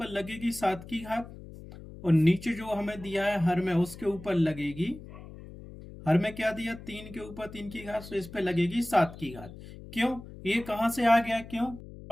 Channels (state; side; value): noise; left; hum, 15 dB below the sound